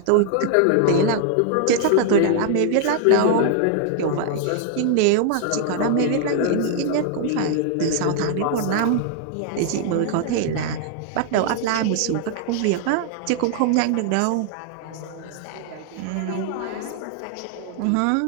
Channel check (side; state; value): both; different; correlation 0.00